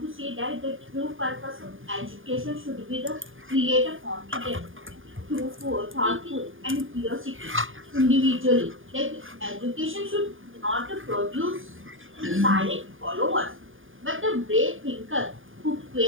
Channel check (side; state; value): left; late; 0.59 ms